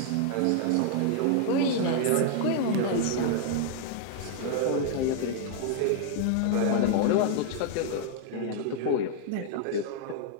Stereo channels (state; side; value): different; both; correlation -0.01